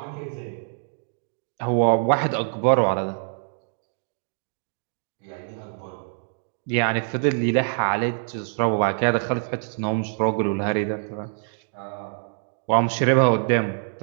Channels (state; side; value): silent; left; digital silence